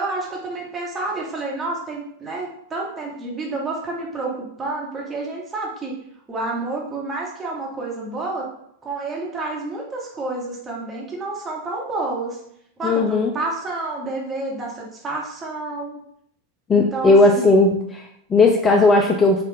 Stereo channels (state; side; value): normal; both; correlation 0.41